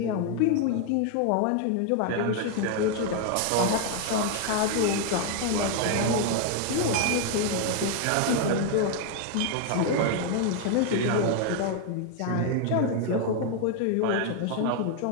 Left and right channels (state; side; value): different; both; correlation 0.01